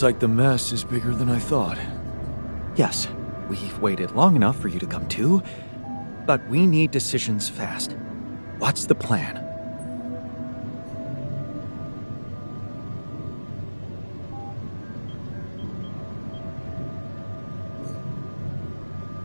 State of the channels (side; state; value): both; inverted; correlation -1.00